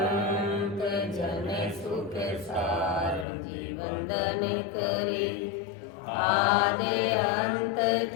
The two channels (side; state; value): right; drops out; at 3.2 s